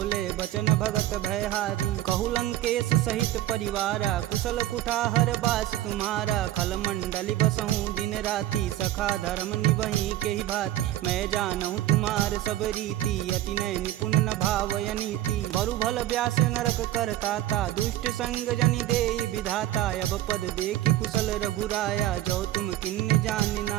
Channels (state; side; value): quieter; left; 13.8 dB